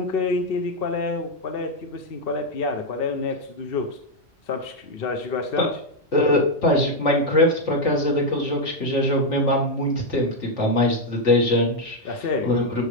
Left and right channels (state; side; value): normal; both; correlation 0.02